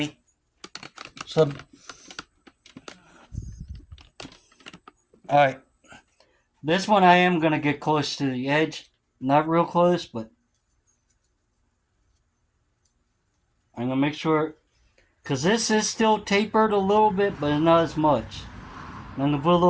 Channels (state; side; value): identical; both; correlation 1.00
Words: So, alright. This one I am going to get close to the edge. Not real close, but I'm going to make sure, because this is still tapered a little bit, but not as much. And I'm going to put a